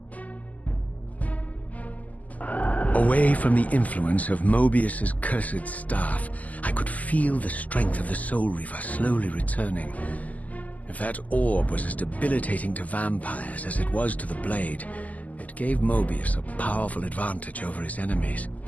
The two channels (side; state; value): right; late; 0.077 ms